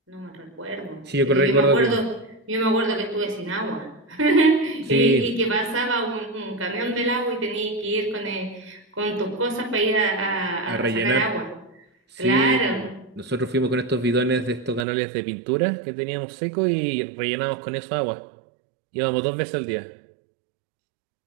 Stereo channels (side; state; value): left; drops out; at 14.9 s